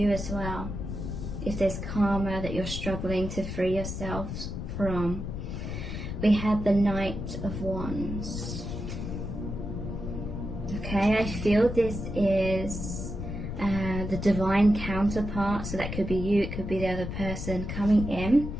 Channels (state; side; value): noise; left; rumble, 5 dB below the sound